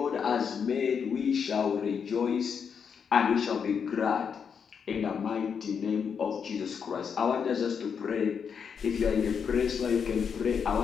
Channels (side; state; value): right; quieter; 6.7 dB